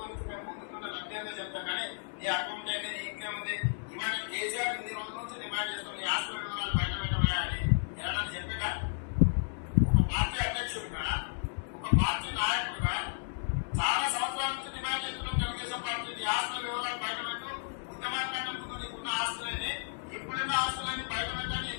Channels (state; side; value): silent; right; digital silence